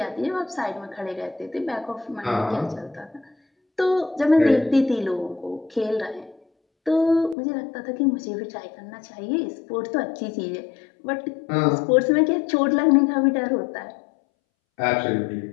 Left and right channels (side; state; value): right; drops out; at 7.4 s